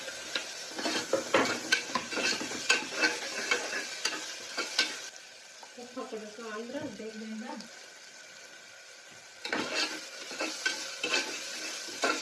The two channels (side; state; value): both; identical; correlation 1.00